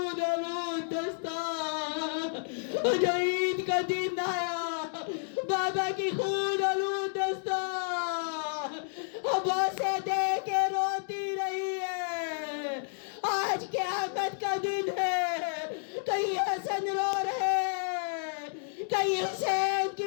آلود دستار، جو عید کا دن آیا بابا کی خون آلود دستار عباسے دے کے روتی رہی ہے۔ آج قیامت کا دن ہے، کہیں حسن رو رہے، کہیں حسین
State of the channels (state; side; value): silent; right; digital silence